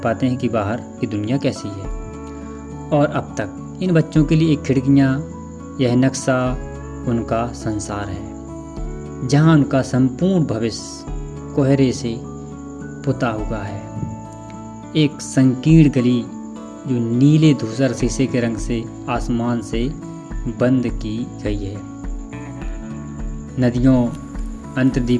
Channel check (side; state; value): both; identical; correlation 1.00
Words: हैं कि बाहर की दुनिया कैसी है। और अब तक इन बच्चों के लिए एक खिड़कियाँ, यह नक्शा उनका संसार है जहाँ उनका संपूर्ण भविष्य कोहरे से पुता हुआ है। एक संकीर्ण गली जो नीले धूसर शीशे के रंग से आसमान से बंद की गई है। नदियों,